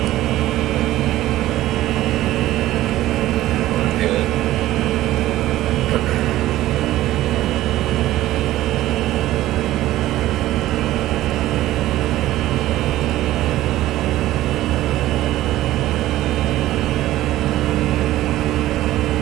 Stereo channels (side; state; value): left; quieter; 15.1 dB